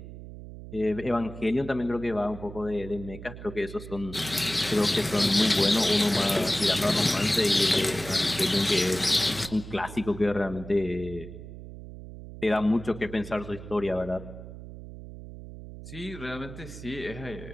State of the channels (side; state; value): right; noise; hum, 13 dB below the sound